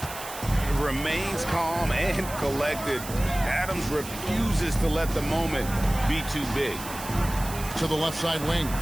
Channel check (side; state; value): right; noise; hiss, 11 dB below the sound